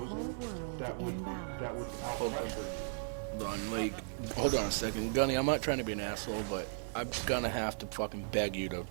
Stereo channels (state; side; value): silent; left; 54 dB below the other